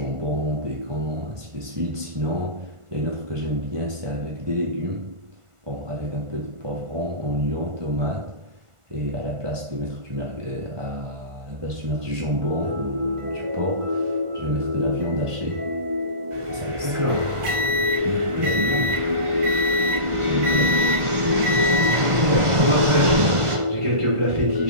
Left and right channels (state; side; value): late; left; 1.5 ms